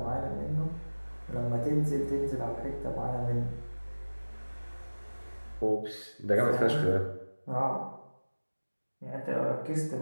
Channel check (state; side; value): inverted; both; correlation -1.00